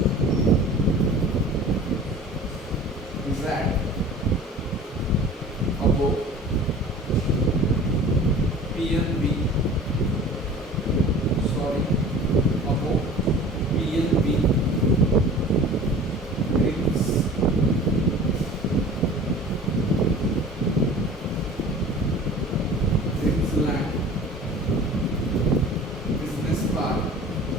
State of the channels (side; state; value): both; normal; correlation 0.42